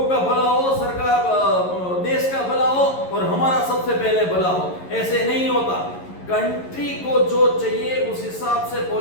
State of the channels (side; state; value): right; late; 11 ms